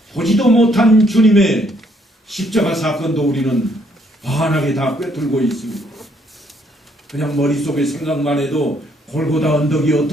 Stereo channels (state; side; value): normal; both; correlation 0.69